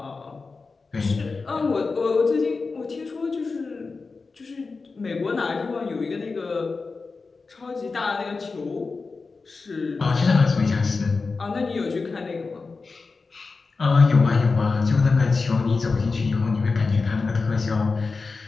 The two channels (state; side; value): quieter; right; 4.2 dB